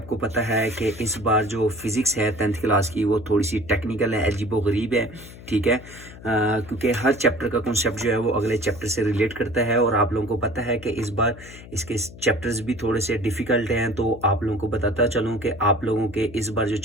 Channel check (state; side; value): noise; left; hum, 17 dB below the sound